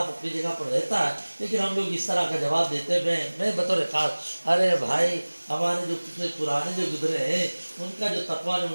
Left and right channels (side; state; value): both; inverted; correlation -1.00